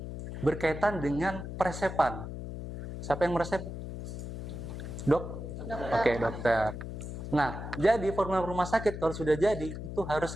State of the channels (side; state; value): left; noise; hum, 7 dB below the sound